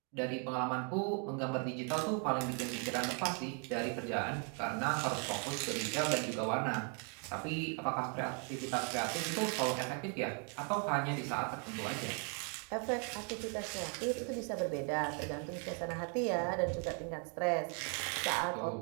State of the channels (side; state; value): left; quieter; 39.2 dB